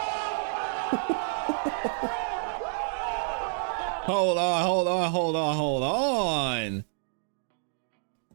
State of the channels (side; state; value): left; silent; digital silence